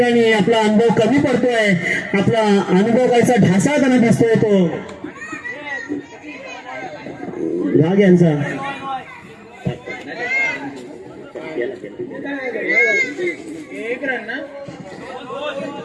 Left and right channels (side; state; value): both; identical; correlation 1.00